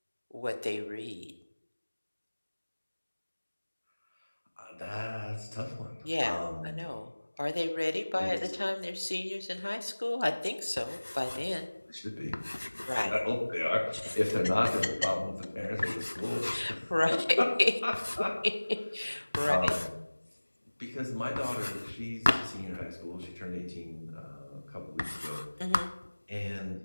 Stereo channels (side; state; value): both; inverted; correlation -1.00